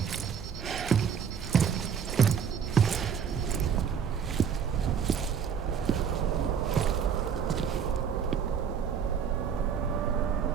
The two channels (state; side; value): quieter; left; 7.4 dB